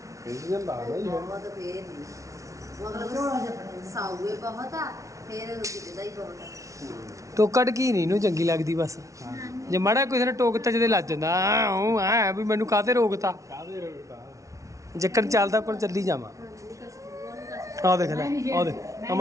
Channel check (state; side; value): late; left; 0.15 ms